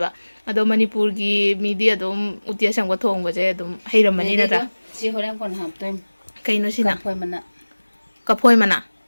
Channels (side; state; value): both; inverted; correlation -1.00